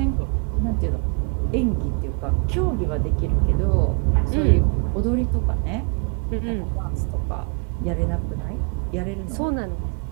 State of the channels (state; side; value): quieter; left; 36.9 dB